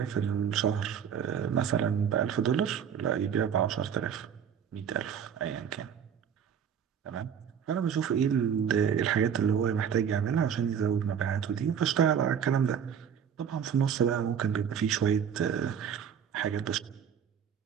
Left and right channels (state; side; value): quieter; left; 7.9 dB